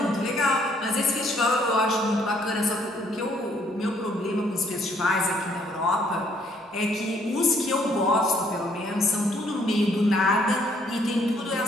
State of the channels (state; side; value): normal; both; correlation 0.65